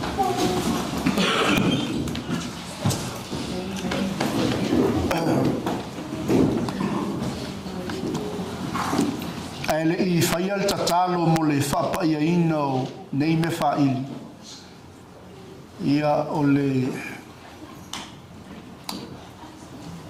Ele I whaia le tatalo mo le whapa ia ina o nei me whaili. Ia o le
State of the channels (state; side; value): identical; both; correlation 1.00